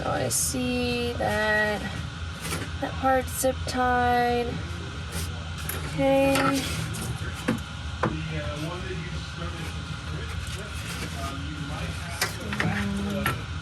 I see that that part's zip tied. Okay.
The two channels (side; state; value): both; identical; correlation 1.00